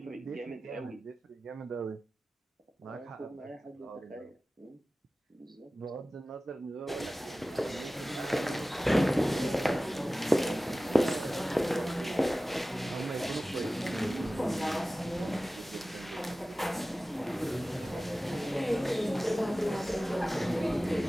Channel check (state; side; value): normal; both; correlation 0.96